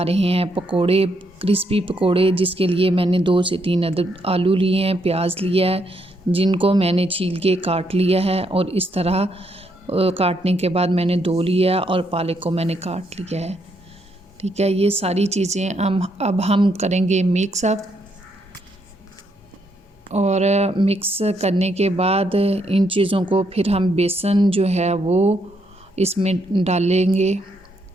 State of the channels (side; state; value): both; normal; correlation 0.76